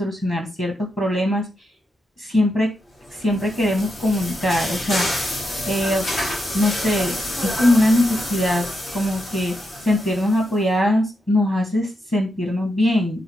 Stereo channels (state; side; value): normal; both; correlation 0.84